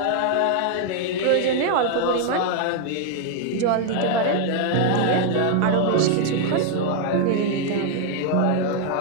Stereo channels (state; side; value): different; both; correlation 0.00